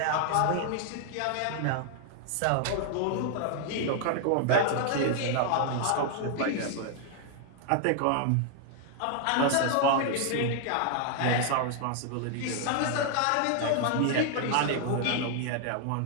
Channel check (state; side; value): different; both; correlation 0.00